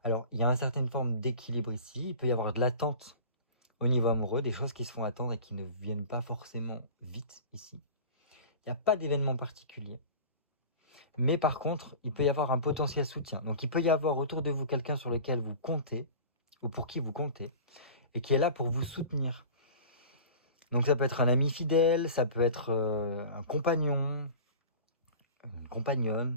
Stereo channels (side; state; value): both; inverted; correlation -0.37